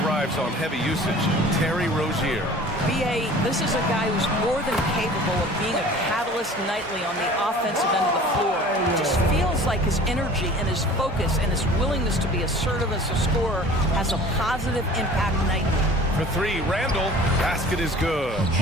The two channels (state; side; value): normal; both; correlation 0.45